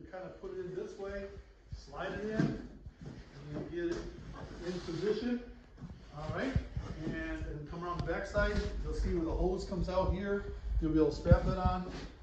kind of put it in this way, slide it in, and you'll get it in position. All right, and then come around the back side. You'll see where the hose comes out here. You'll be able to strap it on.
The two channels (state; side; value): identical; both; correlation 1.00